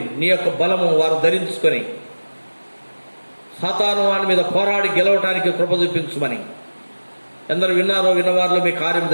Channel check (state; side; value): inverted; both; correlation -1.00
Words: నీ యొక్క బలము వారు ధరించుకొని సాతాను వాని మీద పోరాడి గెలవటానికి కృప చూపించమని, ఎందరు విన్నారో విన్నవారిలో మీ కార్యం